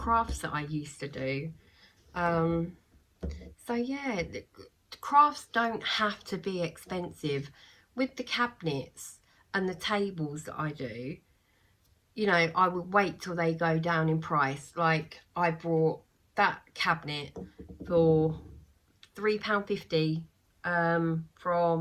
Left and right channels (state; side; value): identical; both; correlation 1.00